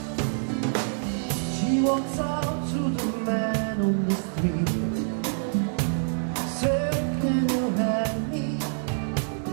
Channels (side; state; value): left; silent; digital silence